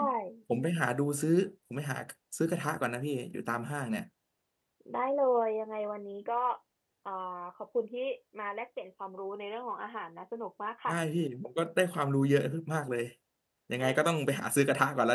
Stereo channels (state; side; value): identical; both; correlation 1.00